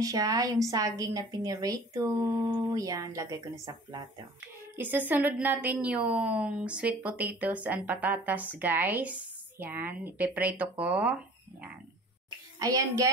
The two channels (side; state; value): both; normal; correlation 0.46